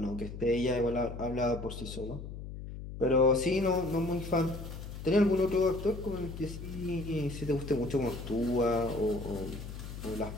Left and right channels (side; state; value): left; noise; hum, 10 dB below the sound